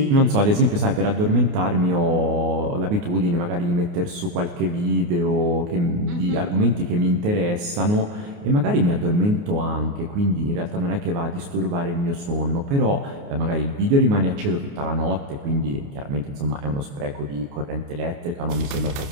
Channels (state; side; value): late; left; 29 ms